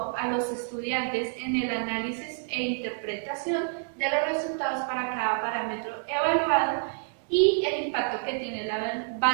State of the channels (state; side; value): silent; left; digital silence